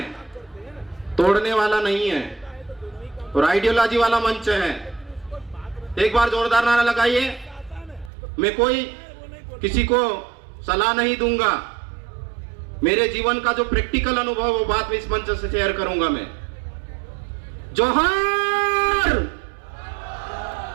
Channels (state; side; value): drops out; left; at 8.1 s